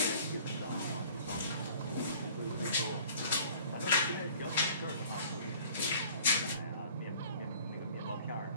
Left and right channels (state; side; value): inverted; both; correlation -0.50